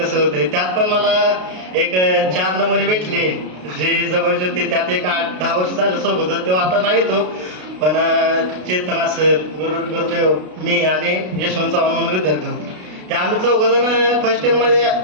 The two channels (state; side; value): late; left; 33 ms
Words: होतंय. त्यात पण मला एक 4 नमुने भेटले जे जवळचे होते, त्यात एक 8-10 वर्ष झालं सोबत, तेव्हा आता नाही तो, पण चेतना सर, गुरुदेव, मी आणि यशवंत चव्हाण म्हणून विद्यार्थी होते. ते आम्ही 4 जण फर्स्ट इयरमध्ये